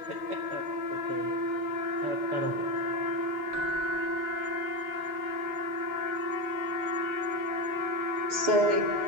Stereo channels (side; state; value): left; late; 6.7 ms